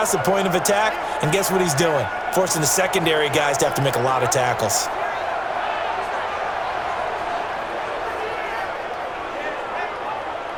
the point of attack, and guess what he's doing? Forcing the secondary guys to have to make a lot of tackles.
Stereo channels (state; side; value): identical; both; correlation 1.00